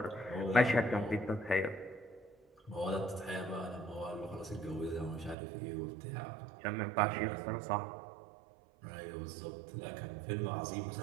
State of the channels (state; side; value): drops out; left; at 5.4 s